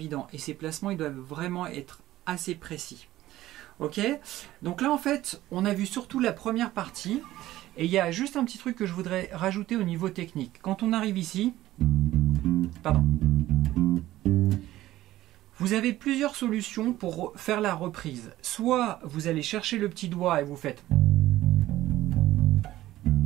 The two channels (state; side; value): quieter; left; 15.2 dB